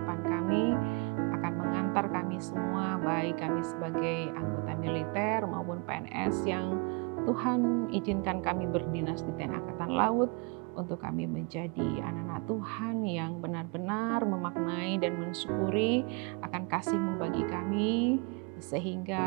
kami akan mengantar kami semua, baik kami sebagai anggota militer maupun PNS yang Tuhan izinkan kami berdinas di TNI Angkatan Laut, untuk kami menjadi anak-anak Tuhan yang benar-benar memaknai dan mensyukuri akan kasih-Mu bagi kami,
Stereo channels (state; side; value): quieter; left; 31.7 dB